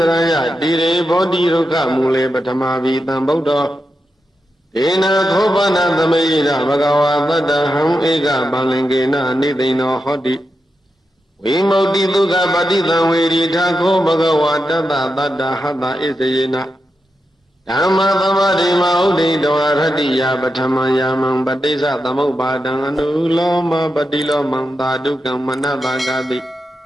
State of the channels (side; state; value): both; normal; correlation 0.88